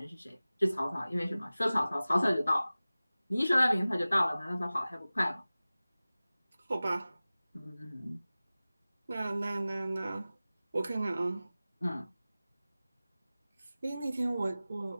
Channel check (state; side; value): inverted; both; correlation -0.97